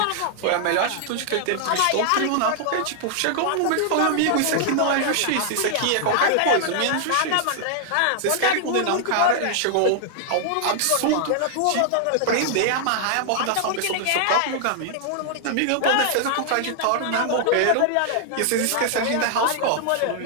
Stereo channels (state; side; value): different; both; correlation -0.01